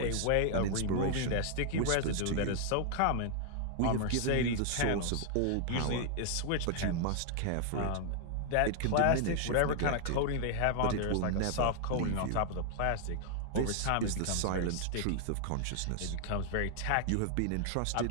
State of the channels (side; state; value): both; different; correlation 0.00